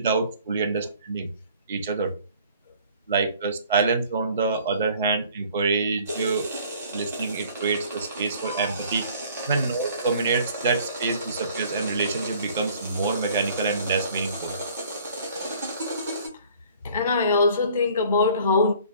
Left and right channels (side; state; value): both; inverted; correlation -0.54